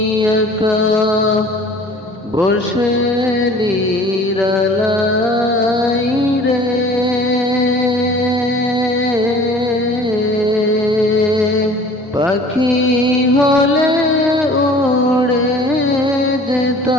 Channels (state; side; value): normal; both; correlation 0.47